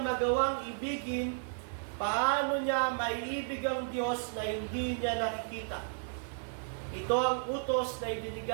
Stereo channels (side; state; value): left; silent; digital silence